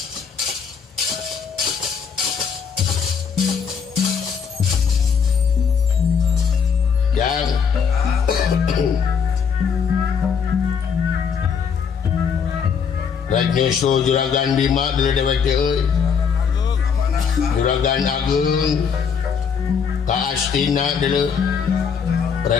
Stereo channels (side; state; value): right; quieter; 6.5 dB